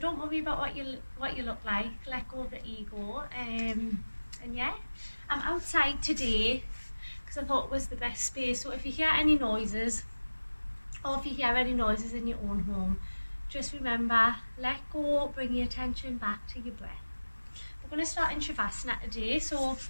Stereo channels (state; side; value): inverted; both; correlation -1.00